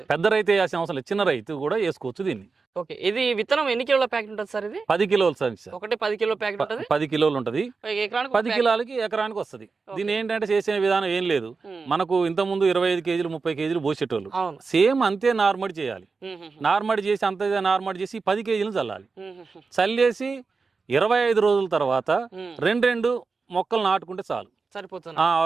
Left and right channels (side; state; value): left; quieter; 4.5 dB